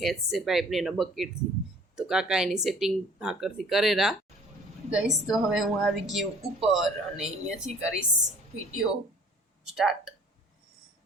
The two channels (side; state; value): both; normal; correlation 0.53